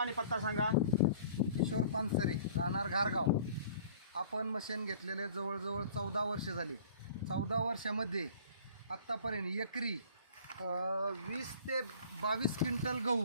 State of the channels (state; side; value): inverted; both; correlation -0.49